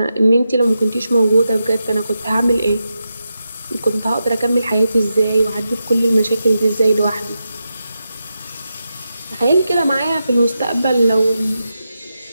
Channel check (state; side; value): inverted; both; correlation -0.88